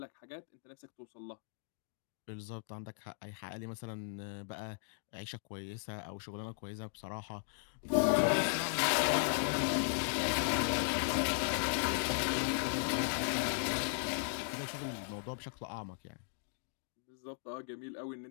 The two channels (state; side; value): silent; right; digital silence